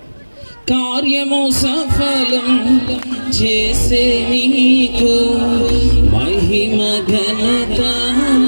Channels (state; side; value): inverted; both; correlation -1.00